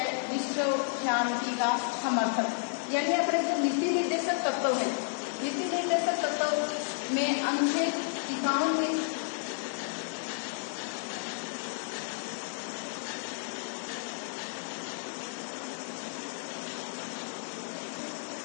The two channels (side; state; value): right; silent; digital silence